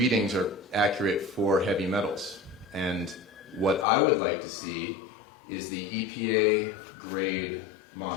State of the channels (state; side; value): drops out; right; at 3.9 s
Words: are accurate for heavy metals. And what I would like to see is the EPA grade